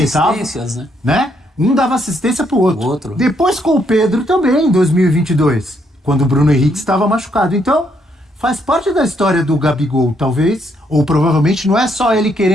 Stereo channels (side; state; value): both; normal; correlation 0.73